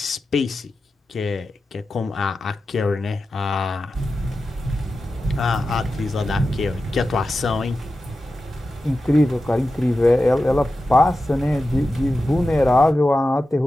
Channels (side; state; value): both; normal; correlation 0.92